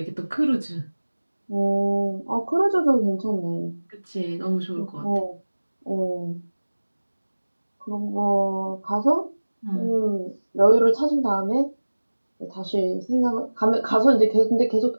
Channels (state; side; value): inverted; both; correlation -1.00